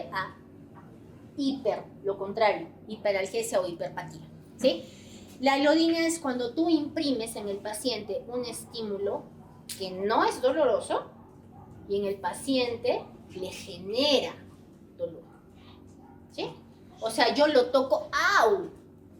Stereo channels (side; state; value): both; identical; correlation 1.00